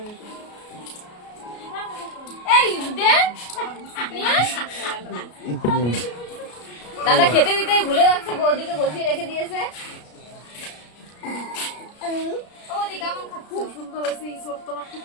হয়েছে। এই দে দাদা খেতে দিতে ভুলে যাচ্ছে, বৌদিকে বসিয়ে রেখে দিয়েছে। বৌদি কেমন খাচ্ছ? খুব সুন্দর হয়েছে, ইঁচড় তোমার খুব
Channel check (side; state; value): right; late; 33 ms